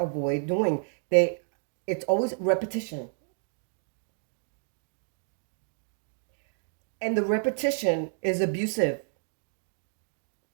doing. They, it's always repetition. And the repetition is abusive.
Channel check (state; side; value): silent; left; digital silence